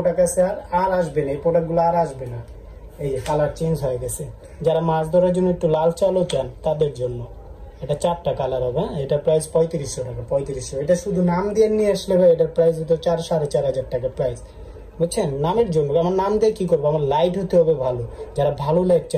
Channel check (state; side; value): identical; both; correlation 1.00